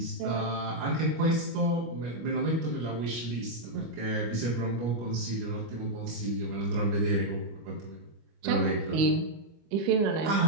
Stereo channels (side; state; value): left; late; 25 ms